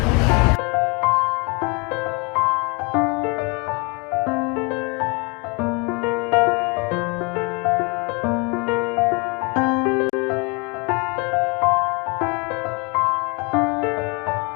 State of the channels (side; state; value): right; quieter; 30.6 dB